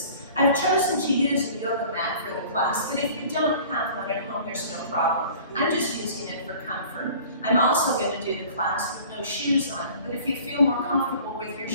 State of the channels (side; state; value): both; inverted; correlation -0.47